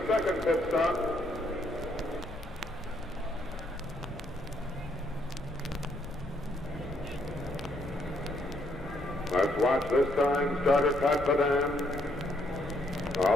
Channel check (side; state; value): left; noise; rumble, 15 dB below the sound